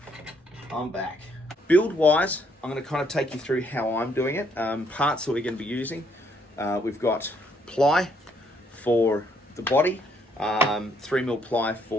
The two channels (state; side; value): normal; both; correlation 0.70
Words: I'm back. Build-wise, I'm going to kind of take you through how I'm doing it. Parts that we're going to be using. We've got ply for the body, 3mm ply